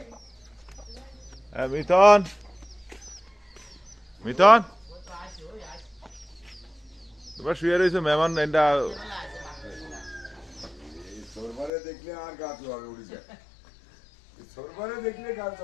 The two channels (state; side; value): drops out; right; at 11.7 s